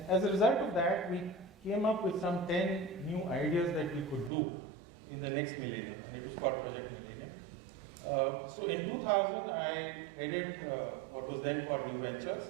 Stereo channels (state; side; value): drops out; left; at 4.3 s